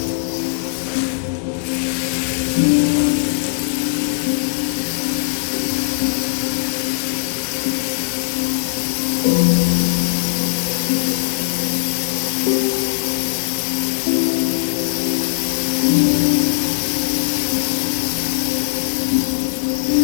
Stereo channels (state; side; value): silent; right; digital silence